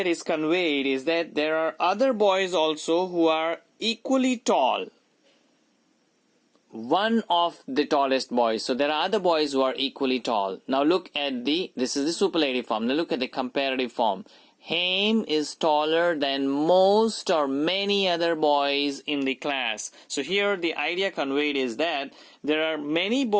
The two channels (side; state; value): both; identical; correlation 1.00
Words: is conveyed is that there are other boys also who are equally tall. one of the tallest boys. So there are other boys who are equally tall. Now look at this is the superlative form. Now look at the comparative form. Haim is taller than most or many other boys in the class. So here the idea conveyed is that there are many